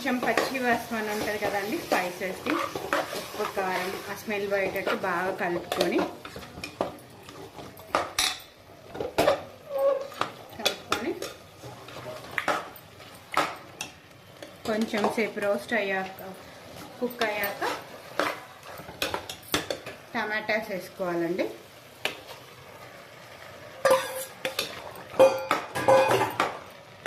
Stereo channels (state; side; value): identical; both; correlation 1.00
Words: పచ్చి వాసన ఉంటుంది కదండి, స్పైసెస్ది, ఉప్పు, కారం, ఆ స్మెల్ పోయేటట్టు బాగా కలుపుకొని కొంచెం సేపు రోస్ట్ అయ్యాక, కుక్ అయ్యాక టమాటాస్ వేసుకోవాలండి.